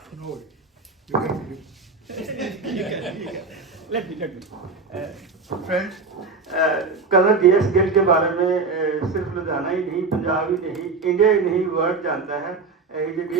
no, you can begin. Let me. Friends, colonel GS Gill के बारे में सिर्फ लुधियाना ही नहीं, पंजाब ही नहीं, इंडिया ही नहीं, वर्ल्ड जानता है। इज ए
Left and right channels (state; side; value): quieter; left; 4.3 dB